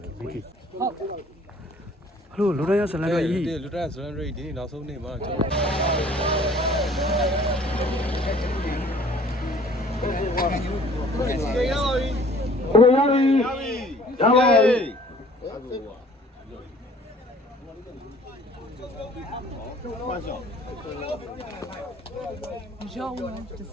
ဟုတ်ဟလိုလူတိုင်းရဇလန်ကကြီး လူတန်းဇလန်ရိတ်ဒီနေ့နောက်ဆုံးနေ့မှာကျွန်တော်ရပါပြီ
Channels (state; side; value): normal; both; correlation 0.53